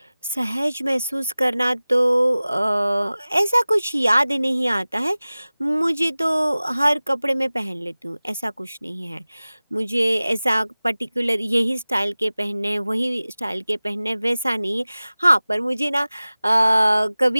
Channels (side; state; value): both; inverted; correlation -0.98